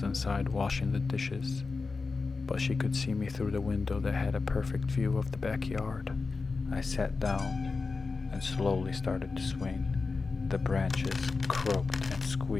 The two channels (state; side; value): quieter; right; 4.2 dB